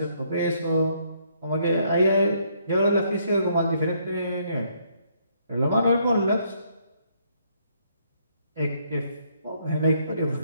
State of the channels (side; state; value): both; inverted; correlation -0.70